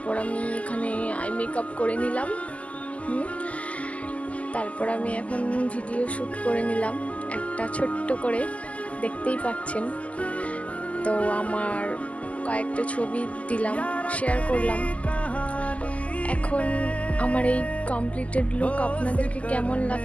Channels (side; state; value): right; late; 0.068 ms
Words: আমি এখানে আই মেকআপ করে নিলাম। তারপর আমি এখন ভিডিও শ্যুট করে নিলাম একটা ছোট্ট করে, দেখতেই পাচ্ছেন। তো আমার কয়েকটা ছবি দিলাম, শেয়ার করলাম। এখন আমার এই কমপ্লিটেড লুক আপনাদেরকে কেমন